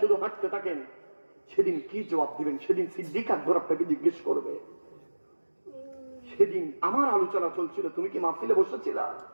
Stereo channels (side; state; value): both; inverted; correlation -1.00